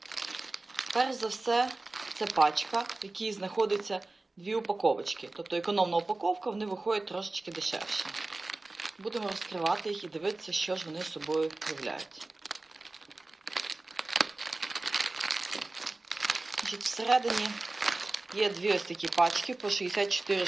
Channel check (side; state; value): left; quieter; 3.1 dB